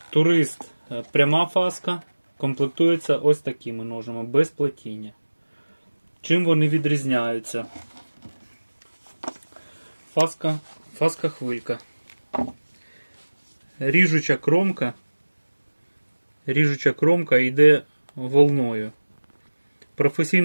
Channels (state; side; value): inverted; both; correlation -1.00